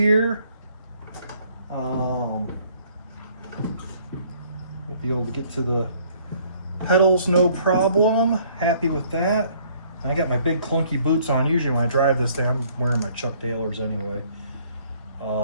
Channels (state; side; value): inverted; both; correlation -0.61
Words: We'll be able to get to the pedals no problem. Happy with that. I got my big clunky boots on. Usually when I drive this thing, I'm wearing my Chuck Taylors anyway.